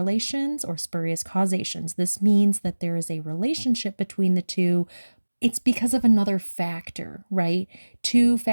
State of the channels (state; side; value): inverted; both; correlation -1.00